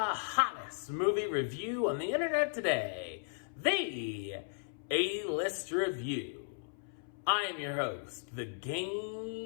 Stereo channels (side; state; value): right; silent; 54 dB below the other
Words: movie review on the internet today, the A-List Review. I am your host, the